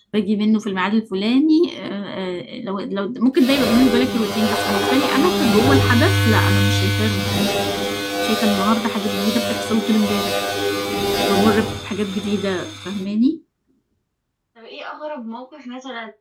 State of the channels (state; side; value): identical; both; correlation 1.00